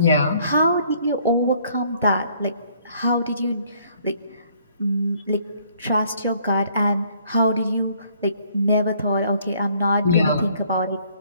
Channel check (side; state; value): both; inverted; correlation -0.63